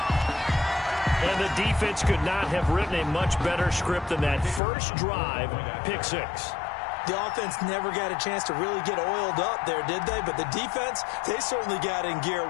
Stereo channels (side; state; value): right; drops out; at 4.6 s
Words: And the defense could not have written a much better script than that first drive, pick 6. The offense never got a chance to really get oiled up there, did they? But the defense, they certainly got in gear.